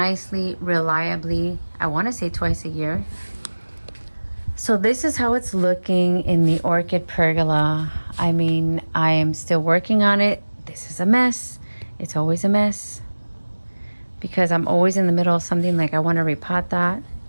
reliably. I want to say twice a year. So this is how it's looking in the orchid pergola. I mean, I am still working on it. This is a mess. It's always a mess because I'm always in the middle of something, like I want to repot that.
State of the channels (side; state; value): both; inverted; correlation -1.00